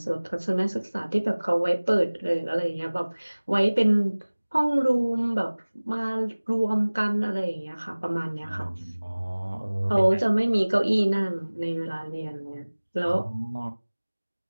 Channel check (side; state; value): both; inverted; correlation -1.00